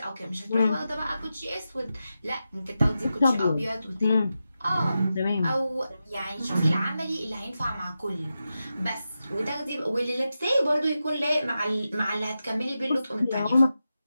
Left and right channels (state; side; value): inverted; both; correlation -0.90